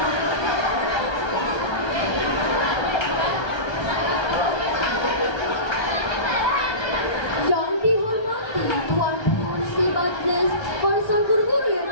Yang dihormati Tuan Pengurusi Majlis, para guru-guru yang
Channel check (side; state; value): right; late; 1.3 ms